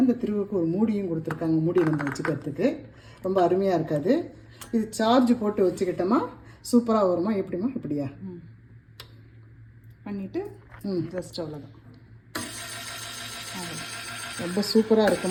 இந்த திருவுக்கு ஒரு மூடியும் கொடுத்துருக்காங்க, மூடி நம்ம வச்சுக்கிறதுக்கு. ரொம்ப அருமையாக இருக்காது. இது சார்ஜ் போட்டு வச்சுக்கிட்டோமா சூப்பராக வருமா. எப்படிமா இப்படியா பண்ணிவிட்டு ஜஸ்ட் அவ்வளோதான். ரொம்ப சூப்பராக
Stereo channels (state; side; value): identical; both; correlation 1.00